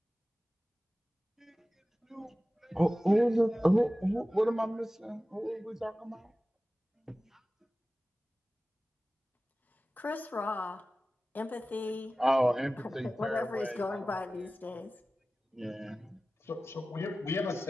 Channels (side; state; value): both; normal; correlation 0.96